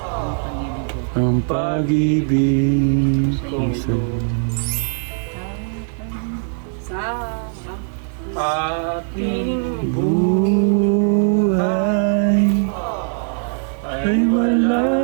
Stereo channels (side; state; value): left; silent; 60 dB below the other